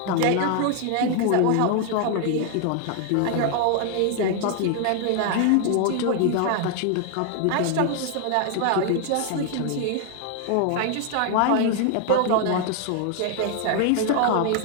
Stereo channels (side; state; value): both; different; correlation 0.00